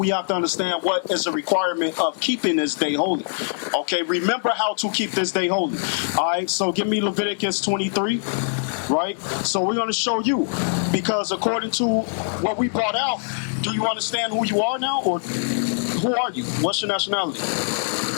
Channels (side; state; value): right; silent; digital silence